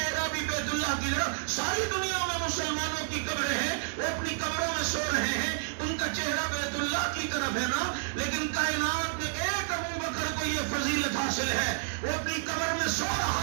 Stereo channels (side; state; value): left; silent; digital silence